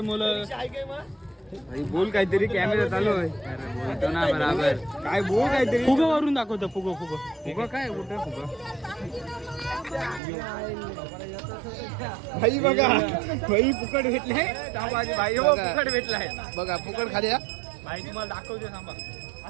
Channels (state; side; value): drops out; left; at 10.2 s